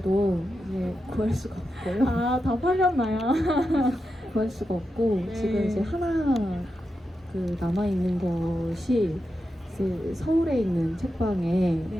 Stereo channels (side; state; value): both; normal; correlation 0.88